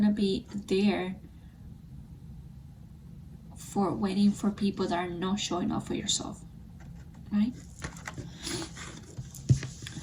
be there for waiting for people that are not showing up for yourself, right?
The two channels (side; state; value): both; identical; correlation 1.00